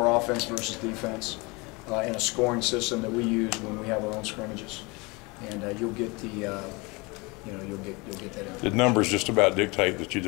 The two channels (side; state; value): right; quieter; 26.7 dB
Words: offense versus defense, in a scoring system that we use when we have our own scrimmages. And you'll get the, you'll get that in. The numbers just about dictate that you